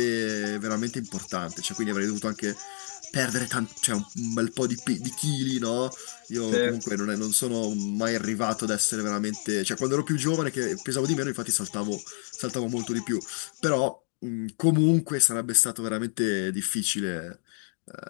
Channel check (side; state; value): right; silent; 59 dB below the other